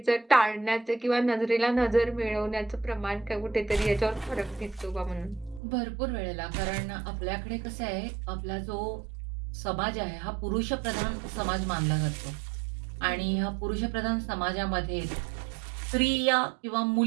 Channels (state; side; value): drops out; left; at 5.6 s